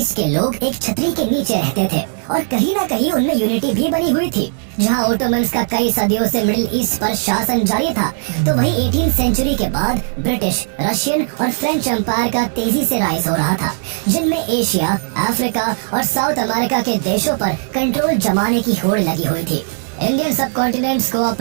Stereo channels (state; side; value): silent; left; digital silence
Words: के लोग एक छतरी के नीचे रहते थे और कहीं ना कहीं उनमें यूनिटी भी बनी हुई थी। जहां ओटोमन्स का कई सदियों से मिडिल ईस्ट पर शासन जारी था, तो वहीं 18th सेंचुरी के बाद ब्रिटिश, रशियन और फ्रेंच एम्पायर का तेजी से राइज हो रहा था, जिनमें एशिया, अफ्रीका और साउथ अमेरिका के देशों पर कंट्रोल जमाने की होड़ लगी हुई थी। इंडियन सब कॉन्टिनेंट्स को